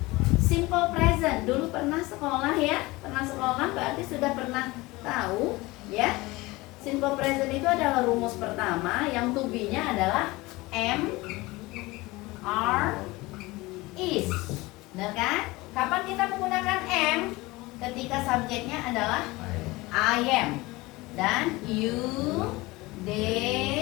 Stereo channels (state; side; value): quieter; right; 21.5 dB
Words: simple present. Dulu pernah sekolah ya, pernah sekolah berarti sudah pernah tahu ya. Simple present itu adalah rumus pertama, yang to be-nya adalah am, are, is. Benar kan? Kapan kita menggunakan am? Ketika subjeknya adalah I am, dan you,